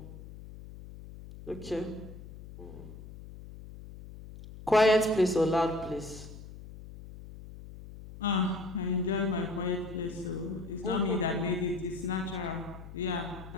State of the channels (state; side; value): noise; left; hum, 14 dB below the sound